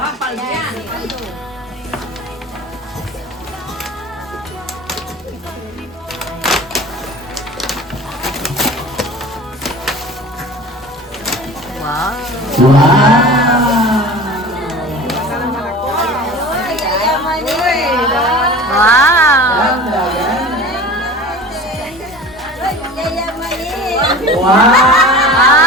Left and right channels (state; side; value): normal; both; correlation 0.38